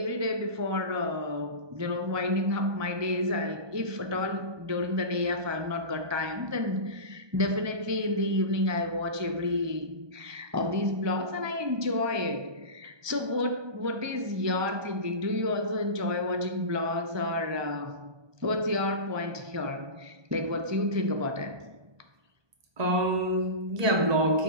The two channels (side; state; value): left; late; 1.2 ms